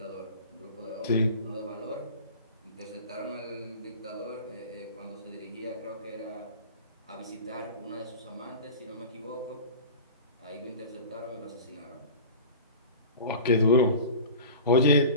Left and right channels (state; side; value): inverted; both; correlation -0.36